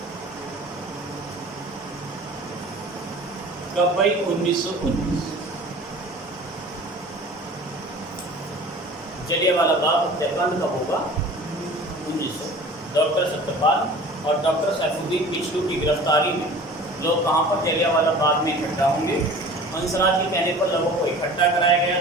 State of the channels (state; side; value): normal; both; correlation 0.42